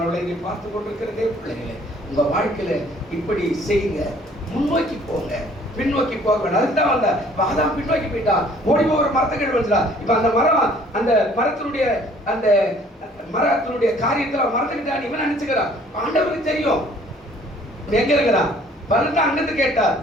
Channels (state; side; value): normal; both; correlation 0.57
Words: நீ பார்த்து கொண்டிருக்கிறதே பிள்ளைகளே, உங்க வாழ்க்கையில இப்படி செய்யுங்க, முன்னோக்கி போங்க, பின்னோக்கி போக வேண்டாம். அதுதான் வந்த அதான் பின்னோக்கி போயிட்டான், ஓடி போகிற மரத்துக்கு வந்துடா. இப்ப அந்த மரம், அந்த மரத்தினுடைய காரியத்துல மறந்துக்கிட்டான் இவன் நினைச்சுக்கிறான். ஆண்டவருக்கு தெரியும் எங்க இருக்கிறான். பலன் அங்கிருந்து கேட்டார்,